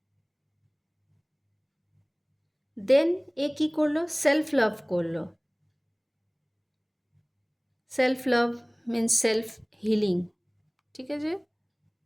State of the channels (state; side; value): identical; both; correlation 1.00